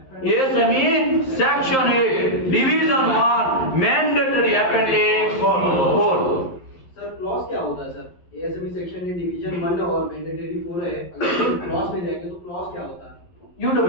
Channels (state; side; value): late; right; 11 ms